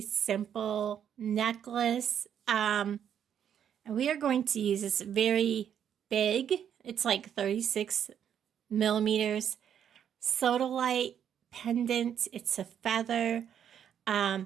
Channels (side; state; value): left; quieter; 8.9 dB